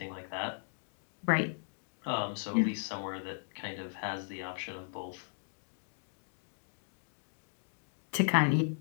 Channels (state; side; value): silent; right; digital silence